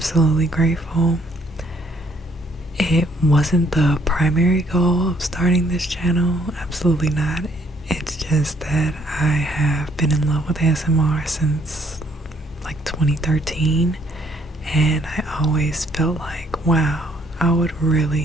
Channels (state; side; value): normal; both; correlation 0.66